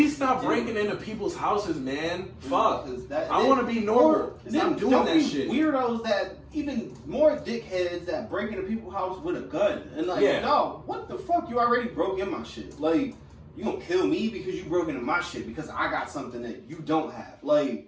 stop you breaking do. into people's houses, man. Fuck. 'Cause I want to be normal. Stop doing don't that be shit. Weirdos that even more dickheads that break into people's house with a gun and like, Yeah. no, what the fuck? You already broke in my shit. Like, you gonna kill me because you broke into my shit because I got something that you don't have.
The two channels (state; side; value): identical; both; correlation 1.00